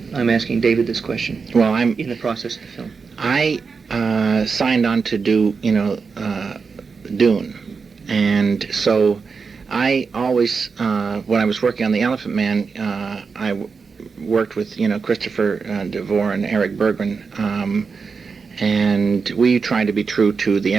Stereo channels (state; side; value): quieter; left; 5.1 dB